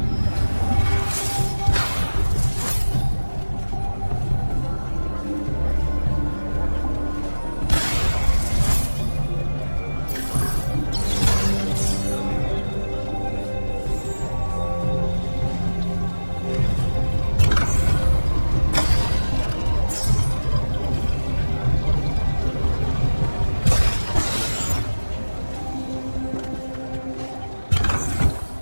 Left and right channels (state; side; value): inverted; both; correlation -1.00